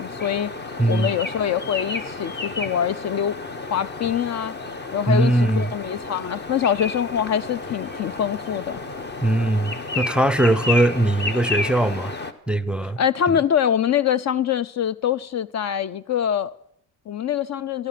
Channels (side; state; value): right; quieter; 3.0 dB